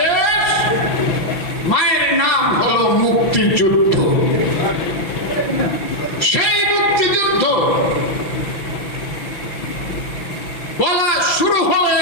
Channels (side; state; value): right; late; 5.7 ms